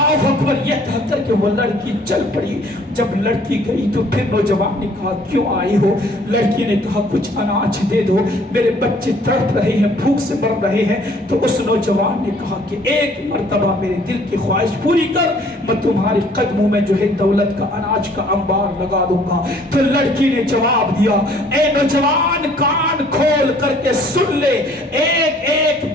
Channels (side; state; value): both; normal; correlation 0.58